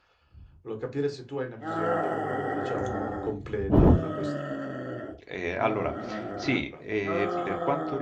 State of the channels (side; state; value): both; identical; correlation 1.00